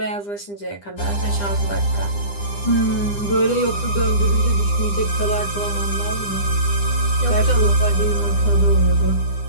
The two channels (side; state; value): right; late; 9.9 ms